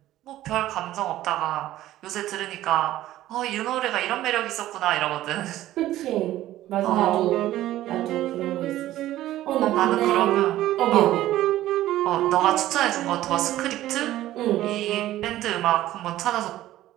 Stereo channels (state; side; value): quieter; left; 14.5 dB